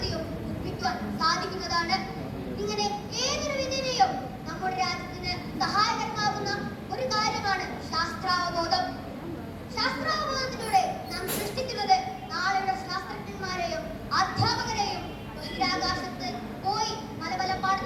നിർമ്മിക്കുവാൻ സാധിക്കുന്നതാണ്. ഇങ്ങനെ ഏതൊരു വിധേനയും നമ്മുടെ രാജ്യത്തിന് സഹായകരമാകുന്ന ഒരു കാര്യമാണ് ശാസ്ത്രാവബോധം. ശാസ്ത്രാവബോധത്തിലൂടെ നാം സൃഷ്ടിക്കുന്നത് നാളെയുടെ ശാസ്ത്രജ്ഞന്മാരെയും അധ്യാപകരെയും ബഹിരാകാശത്ത് പോയി പല പല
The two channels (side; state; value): both; identical; correlation 1.00